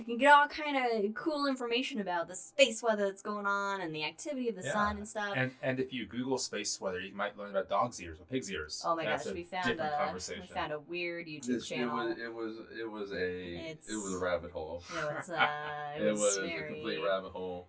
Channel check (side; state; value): both; identical; correlation 1.00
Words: can get all kind of cool information about the space weather that's going on and the activity of the sun and stuff. And if you Google space weather, you might learn about dog's ears or pig's ears. Oh my gosh, we found a weird YouTube channel. It was a rabbit hole. It was a complete rabbit hole.